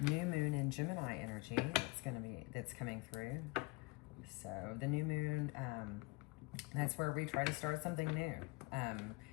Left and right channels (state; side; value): quieter; right; 25.9 dB